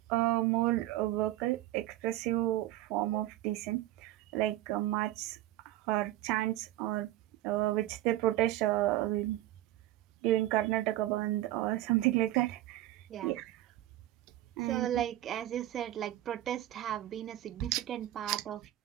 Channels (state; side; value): quieter; left; 14.9 dB